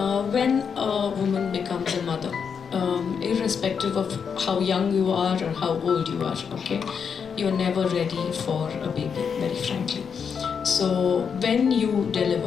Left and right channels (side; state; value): right; quieter; 6.6 dB